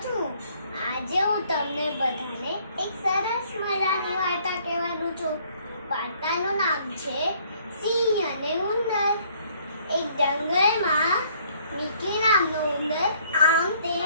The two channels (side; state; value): both; inverted; correlation -0.63